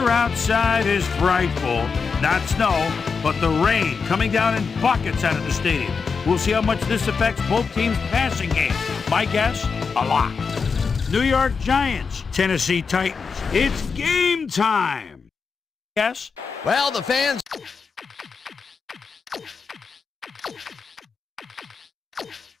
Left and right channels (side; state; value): right; quieter; 5.3 dB